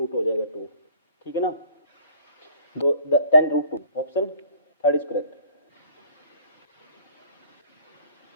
हो जाएगा 2, ठीक है ना। 10√2 option third is correct.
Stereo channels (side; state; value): both; inverted; correlation -0.53